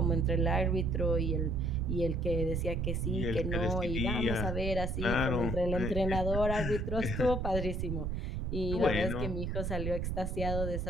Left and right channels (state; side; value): noise; right; rumble, 2 dB below the sound